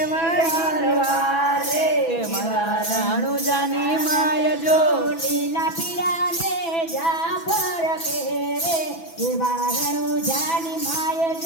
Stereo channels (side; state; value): right; late; 6.1 ms